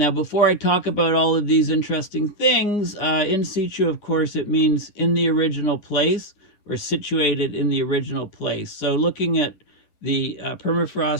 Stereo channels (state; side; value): late; right; 10 ms